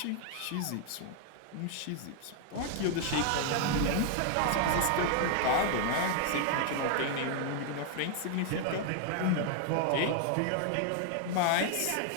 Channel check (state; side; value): different; both; correlation 0.00